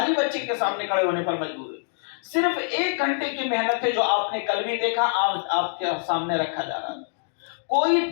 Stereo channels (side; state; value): right; silent; digital silence